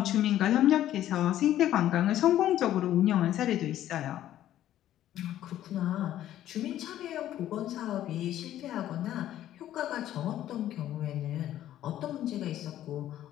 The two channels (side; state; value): right; quieter; 12.5 dB